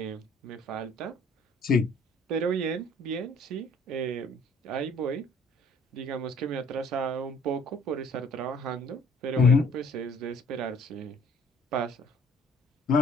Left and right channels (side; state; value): both; normal; correlation 0.57